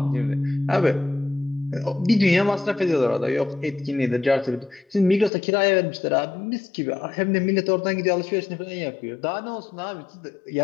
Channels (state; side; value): drops out; right; at 5.3 s